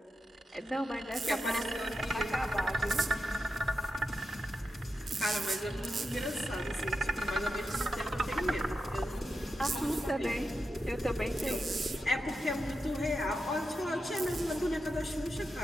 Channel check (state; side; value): normal; both; correlation 0.88